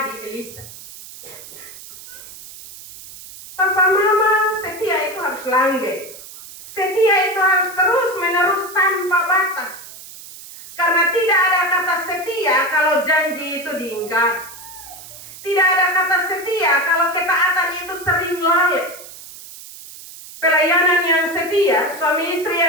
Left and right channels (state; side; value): noise; right; hiss, 16 dB below the sound